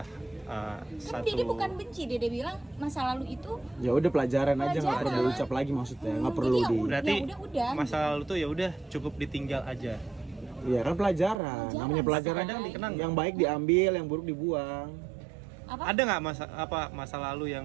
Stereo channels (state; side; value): drops out; left; at 11.4 s